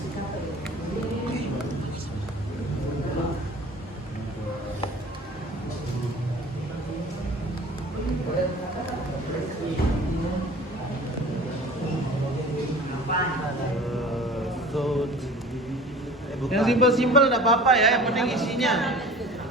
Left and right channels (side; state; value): both; normal; correlation 0.43